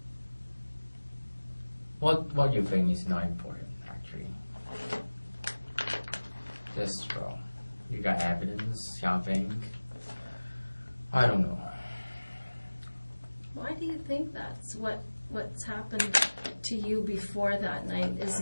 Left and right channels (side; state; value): both; inverted; correlation -1.00